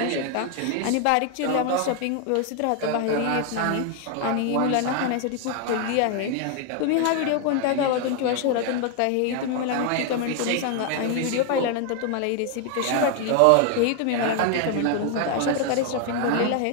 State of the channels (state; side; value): different; both; correlation 0.01